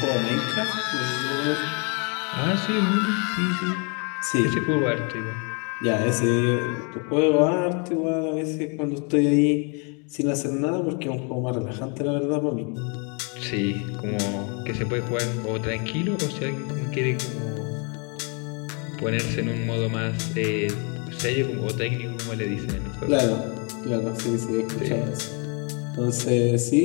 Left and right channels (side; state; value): right; quieter; 35.5 dB